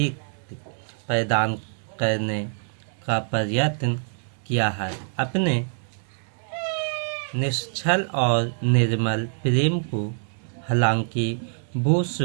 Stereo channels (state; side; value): silent; left; 62 dB below the other